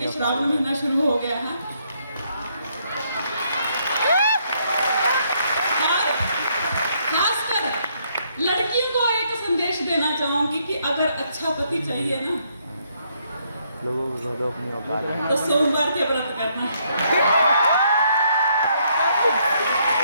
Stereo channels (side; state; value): both; inverted; correlation -0.72